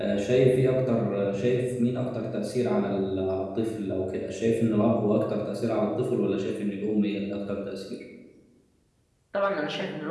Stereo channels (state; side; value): identical; both; correlation 1.00